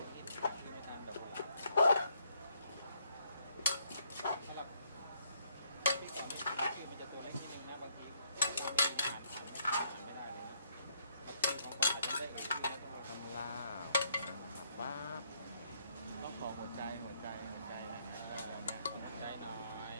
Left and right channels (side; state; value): both; inverted; correlation -0.71